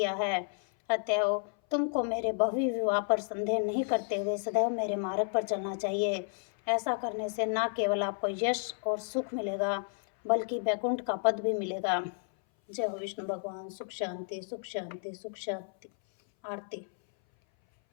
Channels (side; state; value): right; silent; 57 dB below the other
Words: है। अतएव तुमको मेरे भव्य विवाह पर संदेह नहीं करते हुए सदैव मेरे मार्ग पर चलना चाहिए। ऐसा करने से न केवल आपको यश और सुख मिलेगा बल्कि वैकुंठ का पद भी मिलेगा। जय हो विष्णु भगवान। सुख शांति, सुख शांति, सुख शांति। आरती।